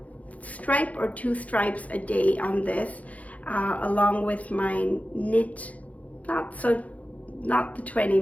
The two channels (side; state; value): right; late; 0.069 ms